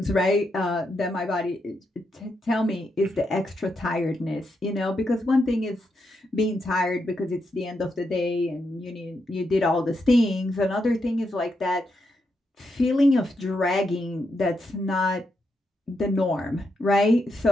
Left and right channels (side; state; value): both; normal; correlation 0.82